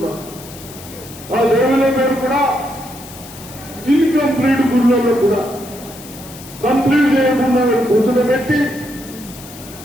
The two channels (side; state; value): left; noise; hiss, 17 dB below the sound